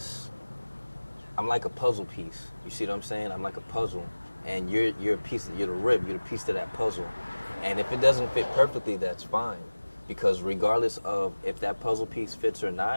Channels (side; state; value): both; inverted; correlation -1.00